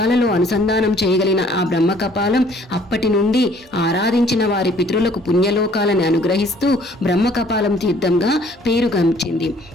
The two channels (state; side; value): normal; both; correlation 0.58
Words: అనుసంధానం చేయగలిగిన ఆ బ్రహ్మ కపాలం అప్పటి నుండి ఆరాధించిన వారి పితరులకు పుణ్యలోకాలను అనుగ్రహిస్తూ బ్రహ్మ కపాలం తీర్థంగా పేరుగంచింది.